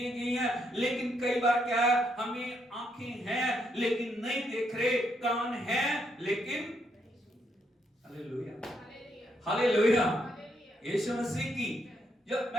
गई हैं। लेकिन कई बार क्या है, हमें आंखें हैं लेकिन नहीं देख रहे, कान हैं लेकिन। Hallelujah, hallelujah. यीशु मसीह की जब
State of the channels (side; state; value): both; normal; correlation 0.76